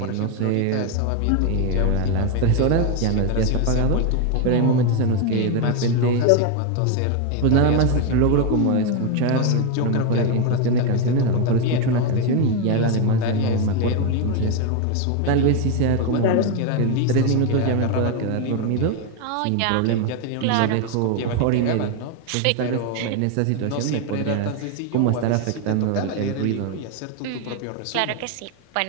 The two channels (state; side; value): different; both; correlation 0.01